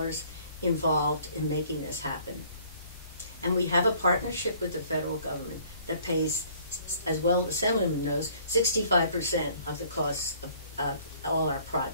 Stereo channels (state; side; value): inverted; both; correlation -0.57